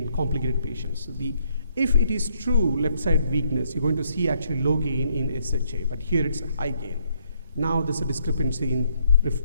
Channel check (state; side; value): inverted; both; correlation -0.71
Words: complicated patients. So if it is true left side weakness, you're going to see actually low gain in SHA, but here it's a high gain. Now there's a discrepancy in